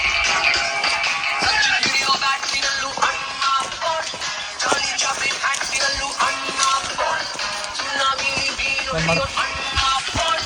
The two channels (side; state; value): both; identical; correlation 1.00